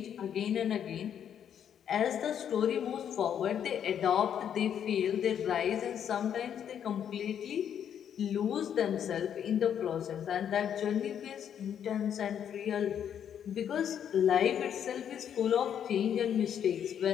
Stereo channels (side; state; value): right; quieter; 8.9 dB